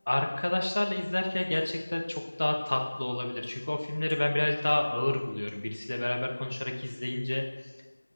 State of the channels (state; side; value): inverted; both; correlation -1.00